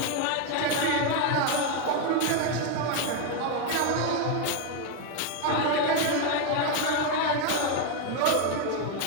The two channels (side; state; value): both; different; correlation 0.01